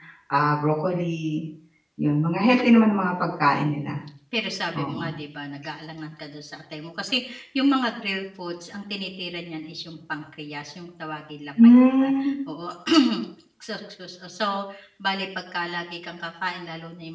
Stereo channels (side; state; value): both; identical; correlation 1.00